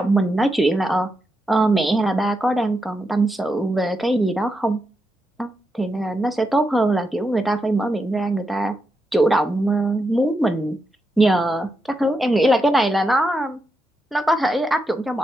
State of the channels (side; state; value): both; normal; correlation 0.85